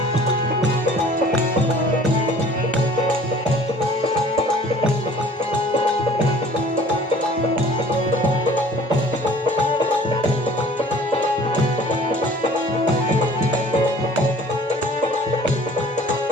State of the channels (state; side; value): normal; both; correlation 0.50